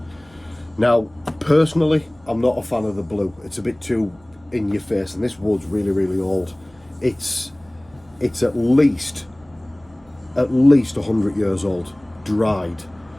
Now, personally, I'm not a fan of the blue. It's a bit too in your face, and this wood's really, really old. It's at least 100 years old, dried.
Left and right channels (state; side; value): noise; right; hum, 29 dB below the sound